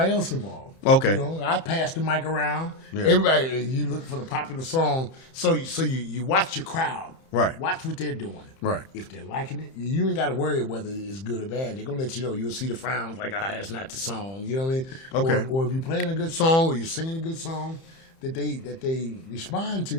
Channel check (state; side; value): late; right; 30 ms